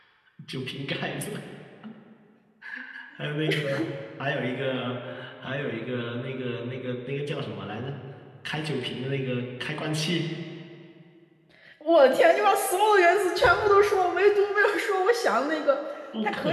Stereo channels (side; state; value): both; identical; correlation 1.00